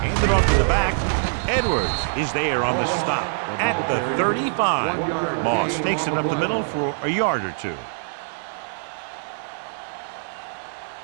Handed off to the back. Edwards is there on the stop at the 35. Moss takes it up the middle for a yard or 2.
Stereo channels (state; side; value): silent; left; digital silence